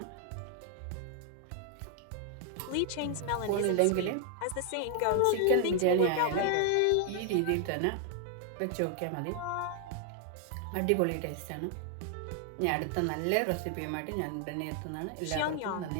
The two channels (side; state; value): both; different; correlation 0.00